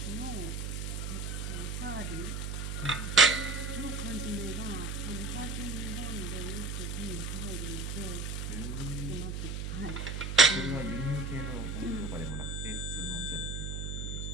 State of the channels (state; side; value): noise; right; hum, 3 dB below the sound